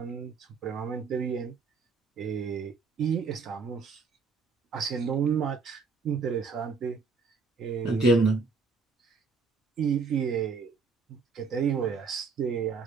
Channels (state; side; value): quieter; left; 4.9 dB